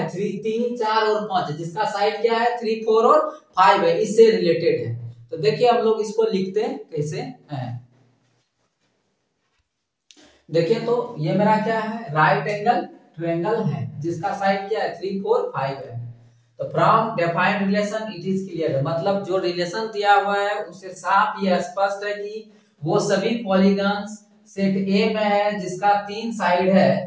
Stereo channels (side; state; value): both; identical; correlation 1.00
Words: 3, 4 और 5 है, जिसका साइड क्या है 3, 4 और 5 है, इससे रिलेटेड है। तो देखिए हम लोग इसको लिखते हैं कैसे हैं। देखिए तो ये मेरा क्या है राइट एंगल ट्रायंगल है जिसका साइड क्या है 3, 4, 5 है। तो from defined relation it is clear, मतलब जो रिलेशन दिया हुआ है उससे साफ ये स्पष्ट है कि वो सभी पॉलीगॉन्स सेट ए में है जिसका 3 साइड है,